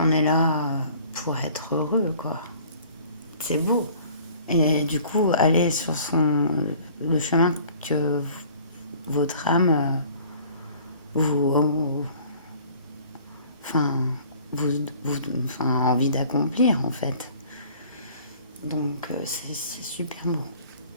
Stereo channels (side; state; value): both; inverted; correlation -0.51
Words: est là pour être heureux, quoi. C'est beau. Et du coup, aller sur le chemin que votre âme vous, enfin, enfin, a envie d'accomplir, en fait. Donc, c'est super beau.